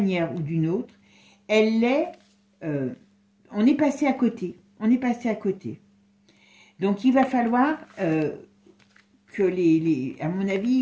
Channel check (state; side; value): identical; both; correlation 1.00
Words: ou d'une autre, elle est... on est passé à côté. On est passé à côté. Donc il va falloir que à mon